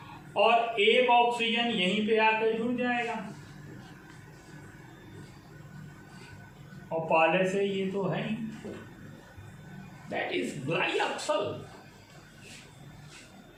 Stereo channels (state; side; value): identical; both; correlation 1.00